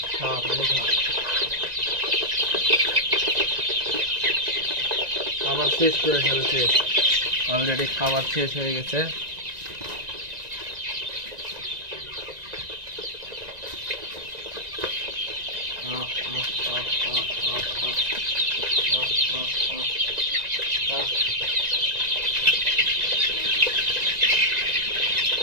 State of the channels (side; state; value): left; late; 1.9 ms